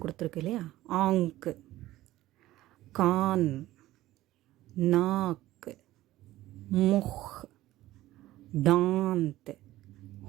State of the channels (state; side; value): quieter; left; 15.9 dB